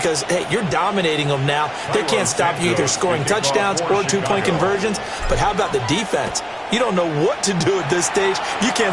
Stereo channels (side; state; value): both; identical; correlation 1.00